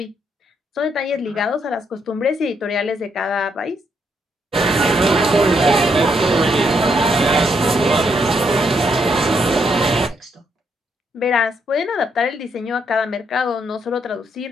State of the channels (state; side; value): normal; both; correlation 0.75